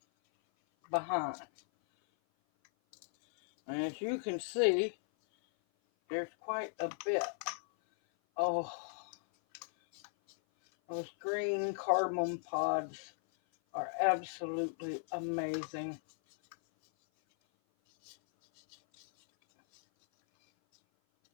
behind. And as you can see, there's quite a bit. Oh, those green cardamom pods are absolutely amazing.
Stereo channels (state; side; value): silent; right; 54 dB below the other